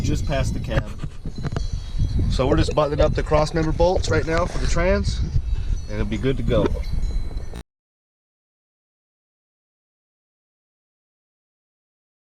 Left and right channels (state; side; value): identical; both; correlation 1.00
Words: past the cab. So we're just buttoning up the cross member bolts right now for the trans. And it'll be good to go.